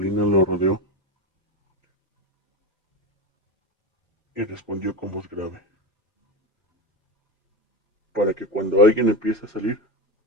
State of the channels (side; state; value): both; normal; correlation 0.19